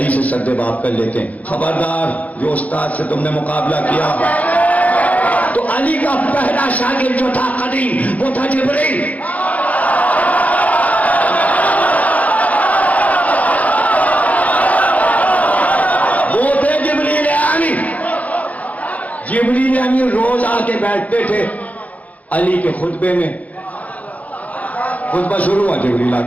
से सद्देबाब कर लेते हैं, खबरदार जो उस्ताद से तुमने मुकाबला किया। तो अली का पहला शागिर्द जो था कदीम, वो था जिब्रील। वो थे जिब्रील अमीन। जिब्रील अमीन रोज आके बैठते थे अली के खुतबे में। खुतबा शुरू हुआ, जिब्रील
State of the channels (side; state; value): right; late; 0.073 ms